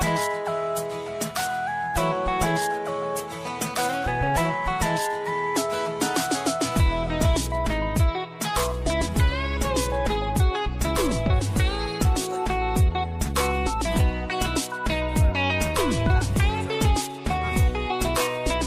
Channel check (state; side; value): identical; both; correlation 1.00